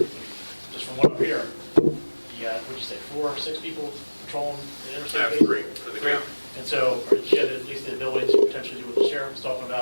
just from what I'm hearing, you got, what'd you say, 4 or 6 people patrolling the interstate? I have base? 3 for the county. And so, or you had at least the ability to potentially do what the sheriff was talking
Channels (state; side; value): inverted; both; correlation -1.00